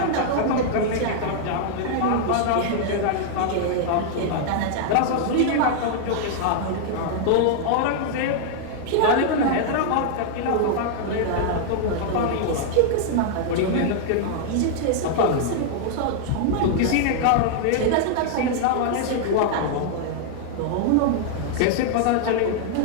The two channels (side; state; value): both; different; correlation -0.01